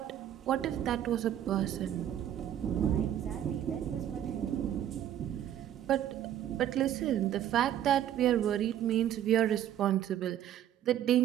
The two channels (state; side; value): quieter; left; 11.1 dB